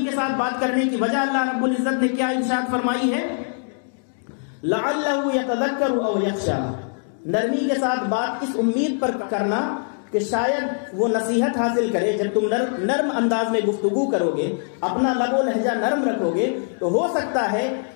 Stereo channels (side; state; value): right; silent; 64 dB below the other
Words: کے ساتھ بات کرنے کی وجہ اللہ رب العزت نے کیا ارشاد فرمائی ہے, لعلہ یتذکر او یخشی. نرمی کے ساتھ بات اس امید پر کرنا کہ شاید وہ نصیحت حاصل کرے. جب تم نرم انداز میں گفتگو کرو گے, اپنا لب و لہجہ نرم رکھو گے, تو ہو سکتا ہے